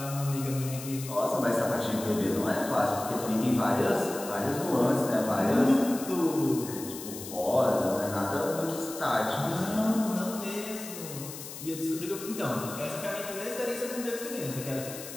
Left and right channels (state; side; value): noise; left; hiss, 11 dB below the sound